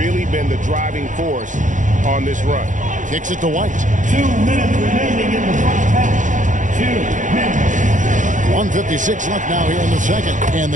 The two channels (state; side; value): late; left; 0.37 ms